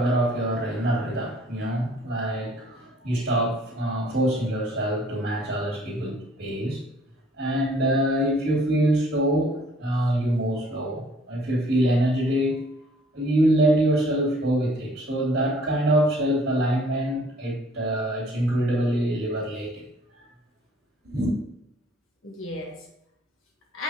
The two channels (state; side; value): normal; both; correlation 0.57